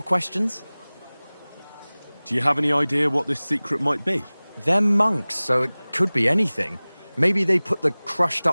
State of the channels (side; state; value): both; inverted; correlation -1.00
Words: questions? Do you have any idea what this secret might be? They're monks, so it could be anything. Maybe they put the